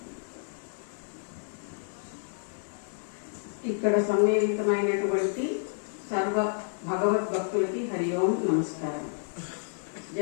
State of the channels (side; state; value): right; silent; digital silence